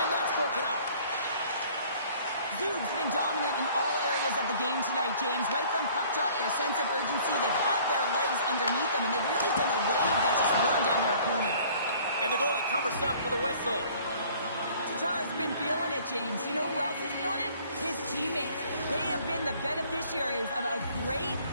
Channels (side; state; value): both; inverted; correlation -0.54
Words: And that's broken up. Zug's been dominant in all areas of the game tonight, James. Right from puck drop, their sense of urgency, they've had their legs underneath them, and they've really been a wave that's just worn down their opponent. And the goalie covers up for the whistle. Tatar's been feeling it, James. You know who else is feeling it? His teammates. They have been the beneficiaries of a great